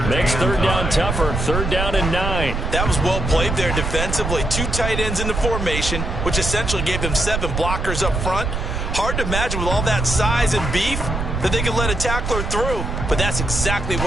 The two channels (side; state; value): right; noise; rumble, 2 dB below the sound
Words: makes 3rd down tougher. 3rd down and 9. That was well played there defensively. 2 tight ends in the formation, which essentially gave them 7 blockers up front. Hard to imagine with all that size and beef that they could let a tackler through. But that's exactly